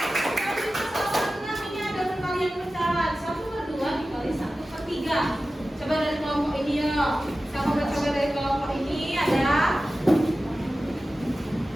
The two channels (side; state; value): both; normal; correlation 0.95